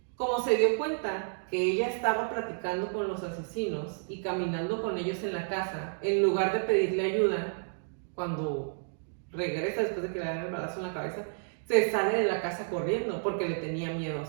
como se dio cuenta que ella estaba platicando con los asesinos y caminando con ellos en la casa, en lugar de pedirle ayuda, cuando regresa después de que le dan el balazo en la cabeza, se sale de la casa corriendo porque le tenía miedo a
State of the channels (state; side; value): silent; left; digital silence